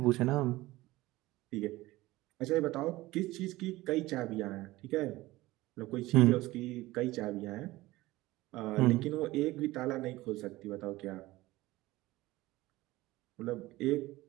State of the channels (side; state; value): left; quieter; 18.5 dB